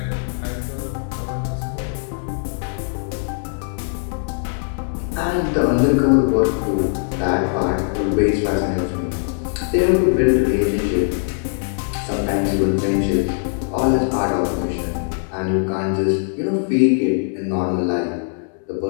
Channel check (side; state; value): right; silent; digital silence